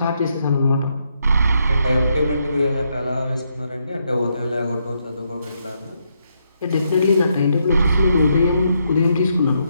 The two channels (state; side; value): inverted; both; correlation -0.78